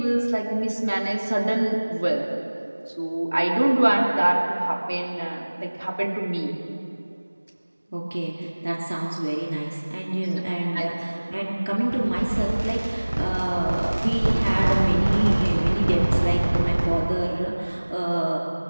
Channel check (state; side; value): inverted; both; correlation -1.00